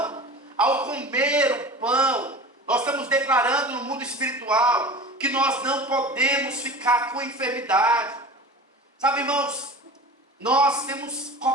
Ao comer o pão, nós estamos declarando no mundo espiritual que nós não podemos ficar com enfermidade. Sabe, irmãos, nós temos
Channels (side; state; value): both; normal; correlation 0.35